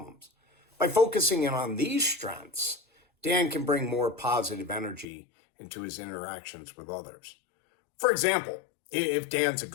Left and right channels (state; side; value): drops out; right; at 5.1 s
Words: By focusing in on these strengths, Dan can bring more positive energy into his interactions with others. For example, if Dan's a